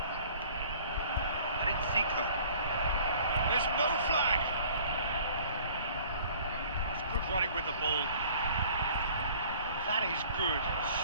And it's Zico. There's no flag. That's good running with the ball. That is good.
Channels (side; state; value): both; inverted; correlation -0.52